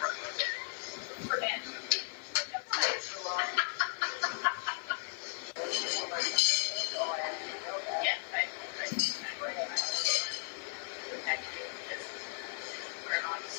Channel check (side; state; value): right; silent; digital silence